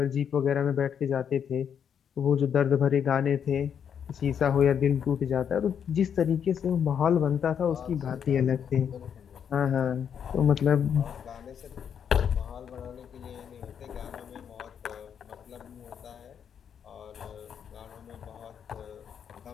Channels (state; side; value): quieter; right; 8.0 dB